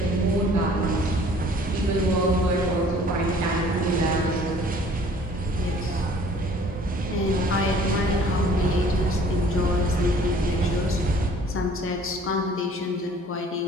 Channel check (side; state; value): both; normal; correlation 0.53